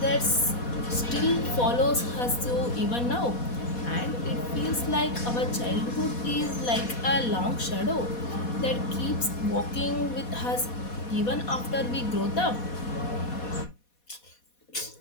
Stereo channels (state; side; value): late; right; 4.2 ms